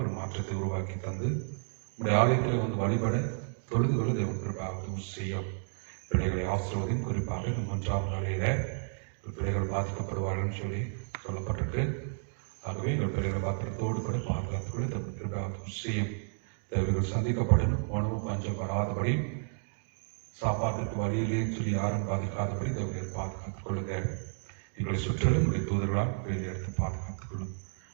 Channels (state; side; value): silent; left; digital silence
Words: ஒரு மாற்றத்தை உருவாக்கி தந்து நம்முடைய ஆலயத்தில் வந்து வழிபட தொழுதுகளை தேவன் கிருபாக செய்யும். பிள்ளைகளை ஆசிர்வதியும். குறிப்பாக இந்த 1ஆம் நாளையில பிள்ளைகள் பாதிக்கப்படுவார்கள் சொல்லி சொல்லப்பட்டிருக்கு. ஆகவே எங்கள் பிள்ளைகளை பாத்திரத்தோடு கூட பாதுகாத்துக்கொள்ள தேவன் கிருபாக செய்யும். தேவைகள் சந்திக்கப்படணும். உணவு பஞ்சம் வராதபடி, சாப்பாட்டுக்கு வழியிலே சொல்லி யாரும் பாதிக்காதபடி தேவையை பாதுகாத்துக் கொள்ளுங்க. எங்களை சுற்றிலும் உங்களுடைய தூதர்களால் வெளியே எடுத்து பாதுகாத்துக் கொள்ளும்.